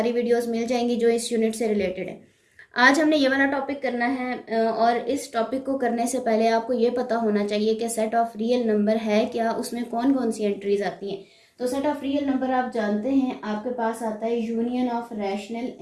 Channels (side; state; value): both; identical; correlation 1.00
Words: वीडियोस मिल जाएंगी जो इस यूनिट से रिलेटेड है। आज हमने ये वाला टॉपिक करना है, और इस टॉपिक को करने से पहले आपको ये पता होना चाहिए कि सेट ऑफ रियल नंबर है क्या, उसमें कौन कौन सी एंट्रीज आती हैं। तो सेट ऑफ रियल नंबर आप जानते हैं, आपके पास आता है union of rational